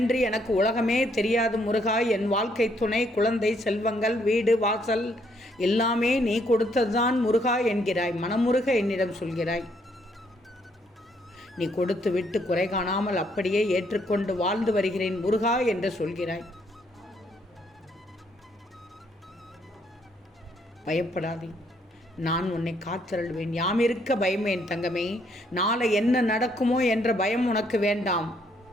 எனக்கு உலகமே தெரியாது முருகா. என் வாழ்க்கை துணை, குழந்தை, செல்வங்கள், வீடு வாசல் எல்லாமே நீ கொடுத்ததுதான் முருகா என்கிறாய். மனமுருக என்னிடம் சொல்கிறாய். நீ கொடுத்து விட்டு குறை காணாமல் அப்படியே ஏற்றுக்கொண்டு வாழ்ந்து வருகிறேன் முருகா என்று சொல்கிறாய். பயப்படாதே, நான் உன்னை காத்தருள்வேன். யாம் இருக்க பயமேன் தங்கமே. நாளை என்ன நடக்குமோ என்ற பயம் உனக்கு வேண்டாம்.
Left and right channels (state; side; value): normal; both; correlation 0.70